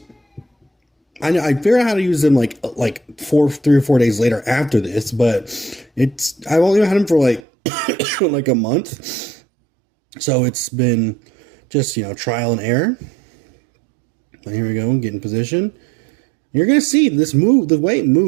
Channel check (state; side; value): drops out; left; at 7.4 s